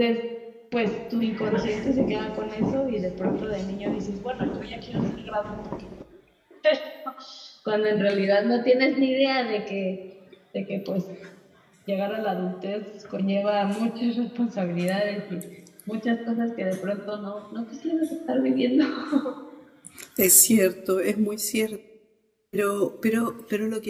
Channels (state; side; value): identical; both; correlation 1.00